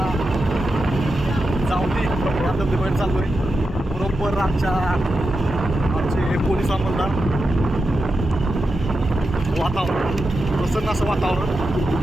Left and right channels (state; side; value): normal; both; correlation 0.89